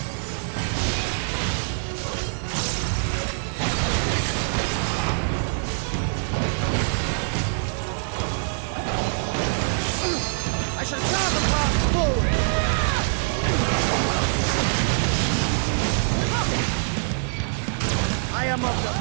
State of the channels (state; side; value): silent; left; 62 dB below the other